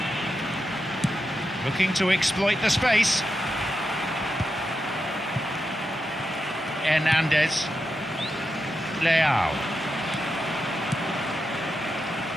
Looking to exploit the space. Hernandez. Leao.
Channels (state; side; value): normal; both; correlation 0.87